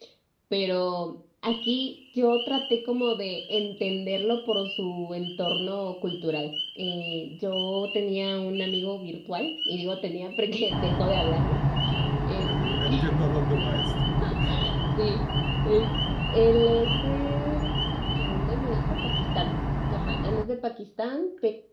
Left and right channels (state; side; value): identical; both; correlation 1.00